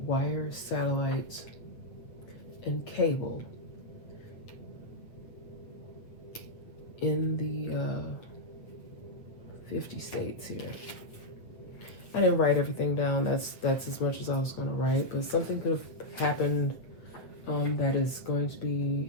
wire, satellites, and cable in the 50 states here. I didn't write everything down. That's as much as I was going to write, but something could have happened that is going to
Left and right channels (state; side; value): late; right; 8.0 ms